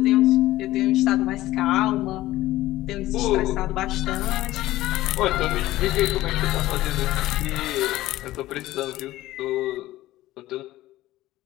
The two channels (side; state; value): right; quieter; 16.1 dB